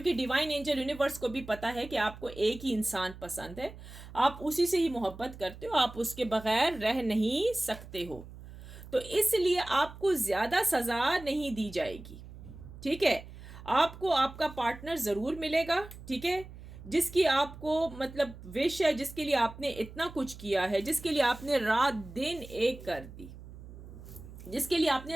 कि डिवाइन एंजल यूनिवर्स को भी पता है कि आपको एक ही इंसान पसंद है, आप उसी से ही मोहब्बत करते हो, आप उसके बगैर रह नहीं सकते हो। तो इसलिए आपको ज़्यादा सज़ा नहीं दी जाएगी। ठीक है, आपको आपका पार्टनर ज़रूर मिलेगा। ठीक है, जिसकी आपको मतलब विश है, जिसके लिए आपने इतना कुछ किया है, जिसके लिए आपने रात दिन एक कर दी, जिसके लिए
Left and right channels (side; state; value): right; noise; hum, 15 dB below the sound